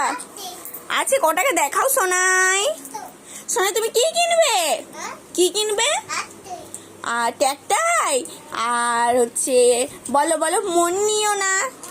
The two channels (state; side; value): identical; both; correlation 1.00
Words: আছে? ক টাকা দেখাও সোনাই। সোনাই তুমি কি কিনবে? কি কিনবে? আর ট্যাকটাই আর হচ্ছে বলো বলো, মন নিও না।